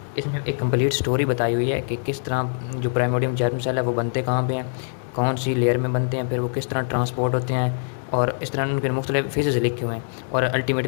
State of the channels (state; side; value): silent; right; 63 dB below the other